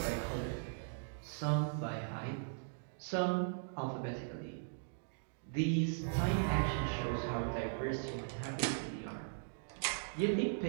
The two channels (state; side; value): silent; left; digital silence